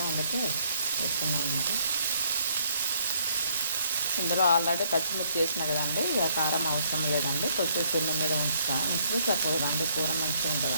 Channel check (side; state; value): both; inverted; correlation -0.69